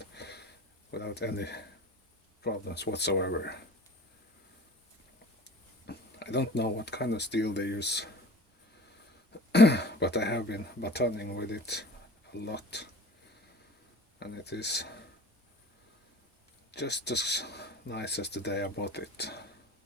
without any problems whatsoever. I don't know what kind of steel they use but I have been batoning with it a lot, and it is just as nice as the day I bought it.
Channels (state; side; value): normal; both; correlation 0.40